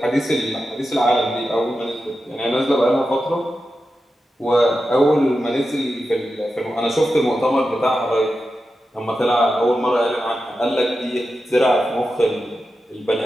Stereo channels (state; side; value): normal; both; correlation 0.91